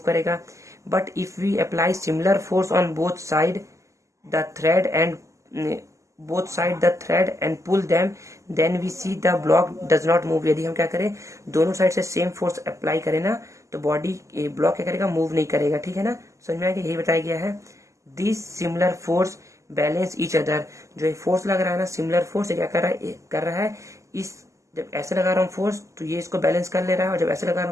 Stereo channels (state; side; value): late; left; 0.15 ms